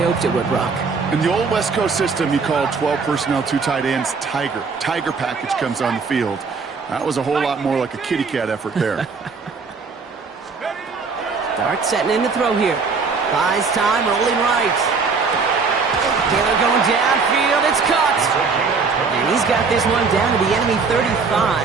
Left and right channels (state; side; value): quieter; left; 4.9 dB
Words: hoped it would, Brock. In the old West Coast system, you called 12 personnel, 2 tight ends, Tiger. Tiger package comes on the field. That was a whole lot more like a kitty cat effort there. Dart setting in to throw here. Buys time, rolling right. Taylor going downfield, it's caught. And he's got this one down to the enemy